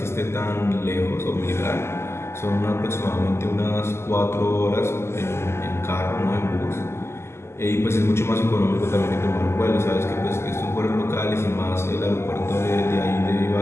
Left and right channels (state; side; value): late; right; 0.12 ms